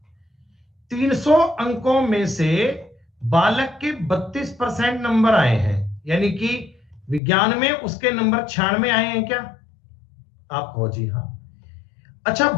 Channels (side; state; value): right; drops out; at 7.2 s